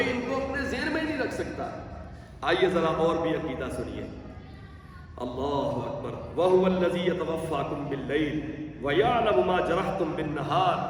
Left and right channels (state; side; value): identical; both; correlation 1.00